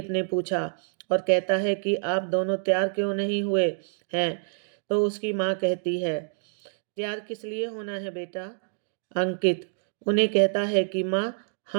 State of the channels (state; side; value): silent; left; digital silence